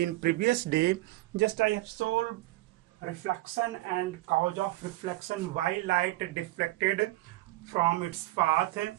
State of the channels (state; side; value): quieter; left; 18.7 dB